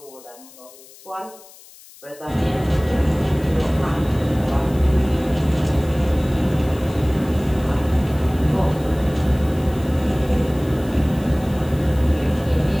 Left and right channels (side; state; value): left; noise; hiss, 22 dB below the sound